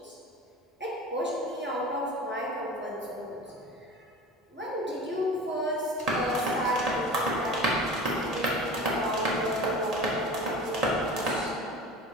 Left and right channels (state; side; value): normal; both; correlation 0.35